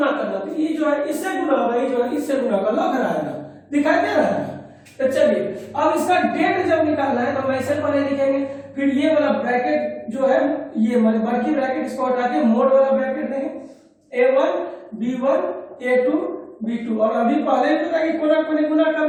करना, तो ये जो है इससे गुना होगा, ये जो है इससे गुना होगा, लग रहा है ना, दिखाई दे रहा है ना। तो चलिए अब इसका डेट जब निकालना है तो हम ऐसे पहले लिखेंगे, फिर ये वाला ब्रैकेट जो है ये मतलब बड़की ब्रैकेट इसको हटा के मोड वाला ब्रैकेट देंगे, A1 B1 A2 B2। और अभी पहले भी पता कि कोना कोनी गुना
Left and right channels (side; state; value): both; identical; correlation 1.00